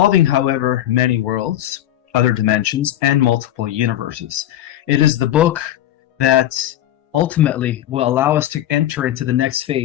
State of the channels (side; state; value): right; quieter; 12.6 dB